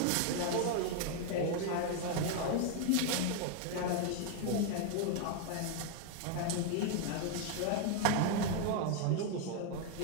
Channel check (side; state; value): both; different; correlation 0.01